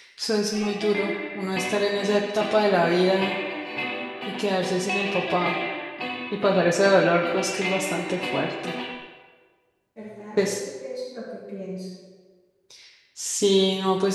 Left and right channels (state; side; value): identical; both; correlation 1.00